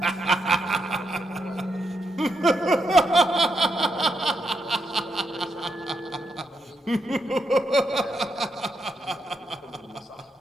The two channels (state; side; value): normal; both; correlation 0.80